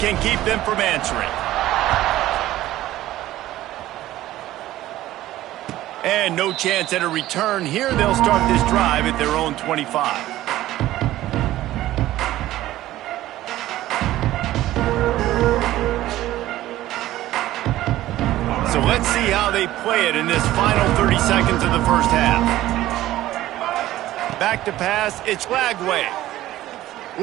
keep them from answering. And no chance at a return here. They'll start this drive at their own 25. So let's see how they play it in this final 30 seconds of the first half. Back to pass, it's Lagway.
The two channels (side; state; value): left; quieter; 15.0 dB